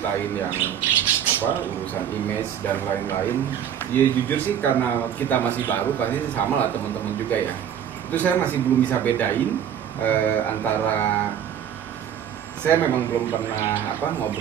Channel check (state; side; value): quieter; left; 9.3 dB